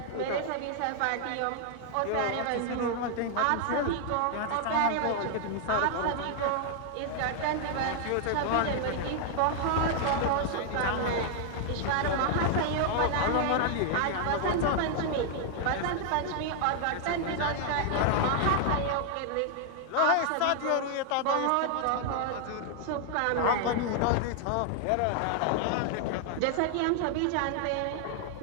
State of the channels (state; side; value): different; both; correlation 0.00